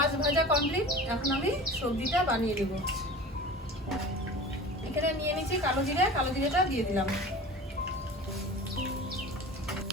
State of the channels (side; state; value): both; normal; correlation 0.37